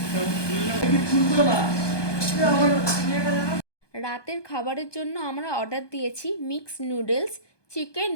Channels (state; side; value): late; right; 1.2 ms